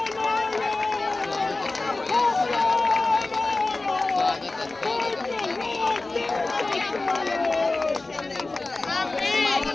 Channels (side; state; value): right; quieter; 3.3 dB